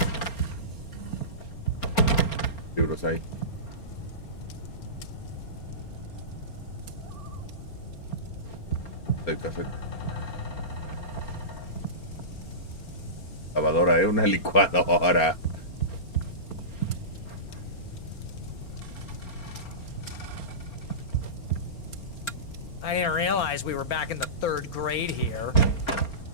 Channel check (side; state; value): right; late; 4.4 ms